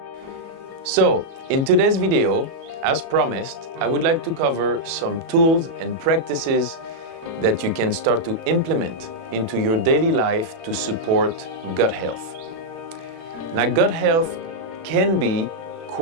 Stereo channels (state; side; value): late; left; 36 ms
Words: So, in today's video, as promised, I would like to cover some tools and practices that you can start to implement into your daily life to support gut health. Now, gut health can be